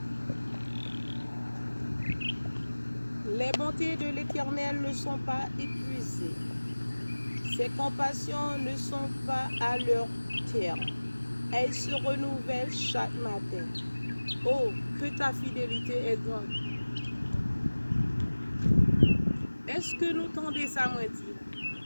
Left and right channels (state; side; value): inverted; both; correlation -1.00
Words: Les bontés de l'Éternel ne sont pas épuisées. Ses compassions ne sont pas à leur terme. Elles se renouvellent chaque matin. Oh, que ta fidélité est grande. Est-ce que nous tendez ça, moi dit?